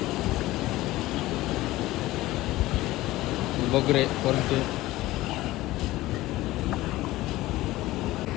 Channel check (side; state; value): right; quieter; 17.5 dB